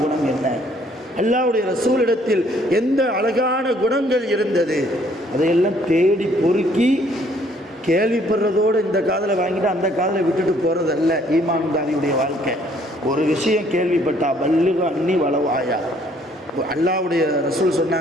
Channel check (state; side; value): normal; both; correlation 0.63